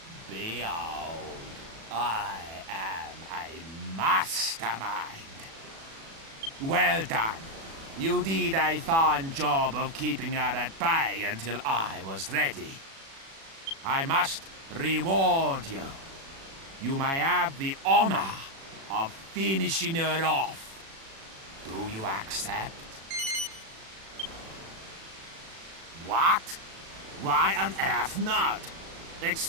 Behold, I am a mastermind. Well done. You did a fine job of keeping her at bay until I was ready. I must reward you. You may have the honor of finishing her off. Do you accept? What? Why on earth not?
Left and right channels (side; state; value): left; late; 36 ms